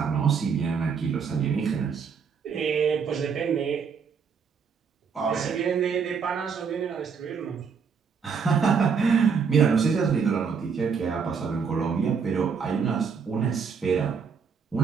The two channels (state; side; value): quieter; left; 6.1 dB